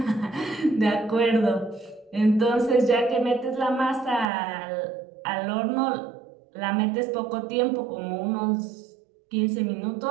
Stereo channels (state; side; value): drops out; left; at 4.2 s